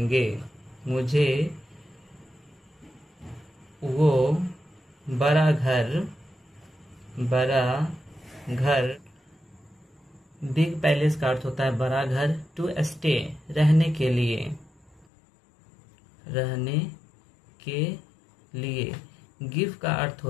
मुझे वो बड़ा घर बिग पैलेस का अर्थ होता है बड़ा घर, टू स्टे रहने के लिए, रहने के लिए। गिव का अर्थ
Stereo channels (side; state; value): right; drops out; at 15.1 s